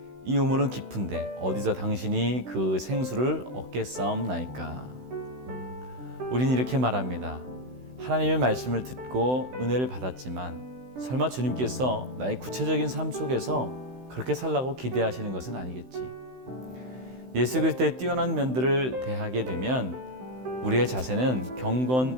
이 우물은 깊은데 어디서 당신이 그 생수를 얻겠사옵나이까. 우린 이렇게 말합니다. 하나님의 말씀을 듣고 은혜를 받았지만 설마 주님께서 나의 구체적인 삶 속에서 그렇게 살라고 기대하시는 것은 아니겠지. 예수 그리스도의 뛰어난 면들을 대하게 되면 우리의 자세는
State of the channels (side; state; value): left; late; 16 ms